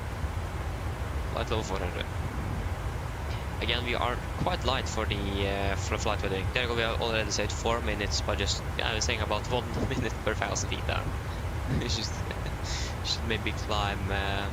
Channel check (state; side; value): identical; both; correlation 1.00